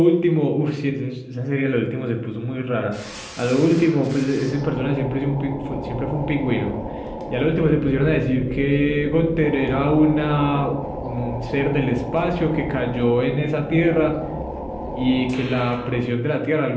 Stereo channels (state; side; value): identical; both; correlation 1.00